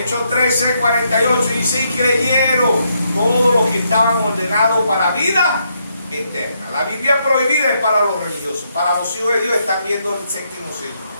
13:48 dice: y creyeron todos los que estaban ordenados para vida eterna. La Biblia prohibida es para los religiosos. Para los hijos de Dios están viendo el séptimo sello,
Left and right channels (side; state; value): both; inverted; correlation -0.77